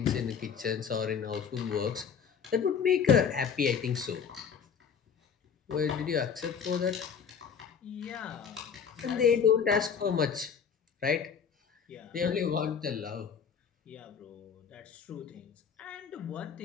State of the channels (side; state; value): right; quieter; 7.0 dB